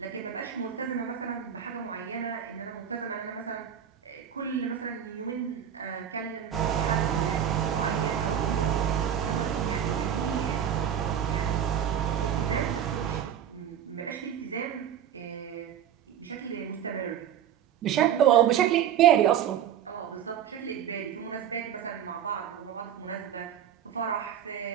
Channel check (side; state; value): left; quieter; 9.5 dB